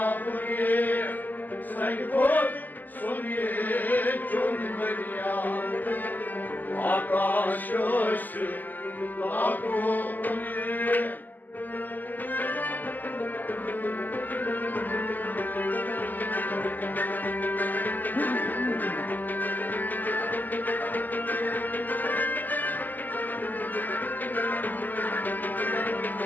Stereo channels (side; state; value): right; late; 0.085 ms